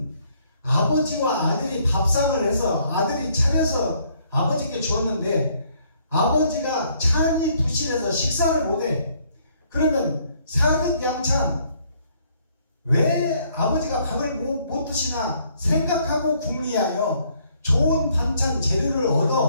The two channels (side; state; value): both; inverted; correlation -0.66